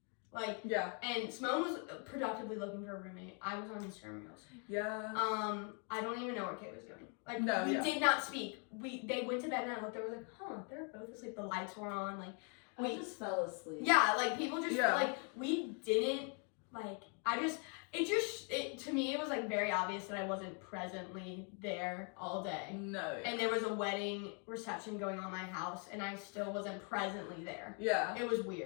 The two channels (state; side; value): quieter; right; 39.3 dB